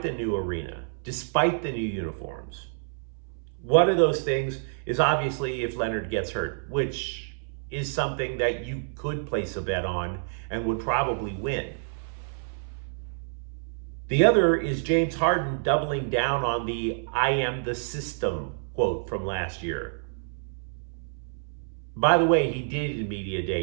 the new arena, despite the new uniforms. One of those things is obviously if Leonard gets hurt, which is something that you could place a bet on and would probably win. The other is James Harden doubling down on the "I am the system" quote from last year. By the way, he did in Media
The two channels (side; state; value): left; silent; 59 dB below the other